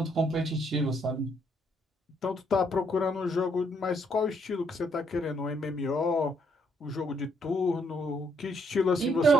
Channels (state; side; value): normal; both; correlation 0.71